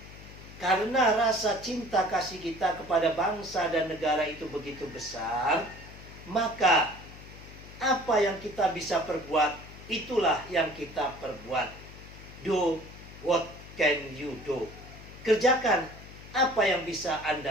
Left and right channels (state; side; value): noise; left; hum, 16 dB below the sound